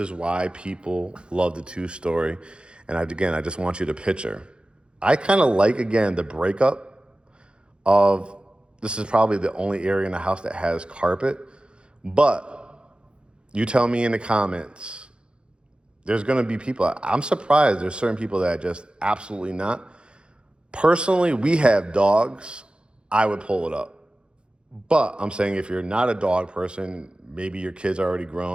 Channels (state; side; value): late; left; 0.054 ms